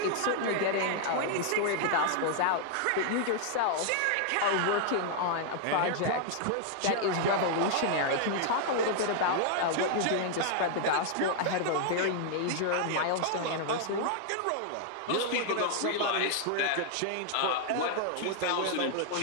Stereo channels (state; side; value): different; both; correlation 0.00